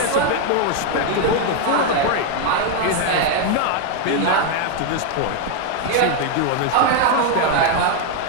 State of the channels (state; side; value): different; both; correlation 0.01